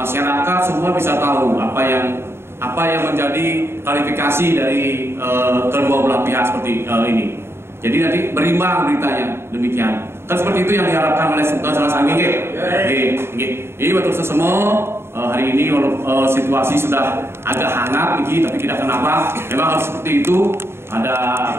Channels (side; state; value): left; late; 0.12 ms